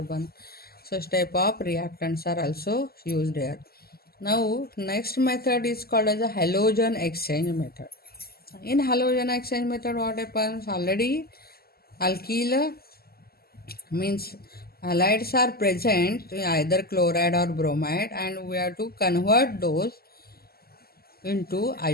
such type of reactants are also used here. Now next method is called as a halogen exchange method. In halogen exchange method, what happens? Already alkyl means halides are present in either chloride or bromide, and we have to convert those into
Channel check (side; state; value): right; late; 0.45 ms